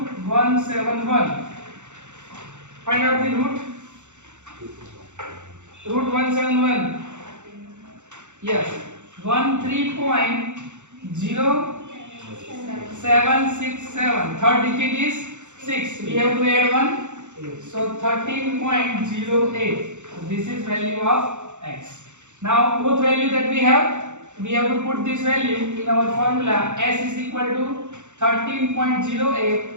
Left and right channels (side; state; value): left; late; 0.84 ms